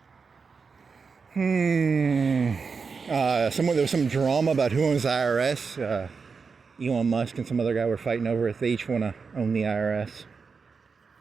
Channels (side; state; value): left; quieter; 5.2 dB